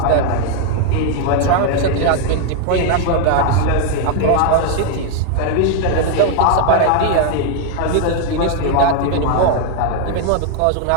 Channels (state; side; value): different; both; correlation 0.00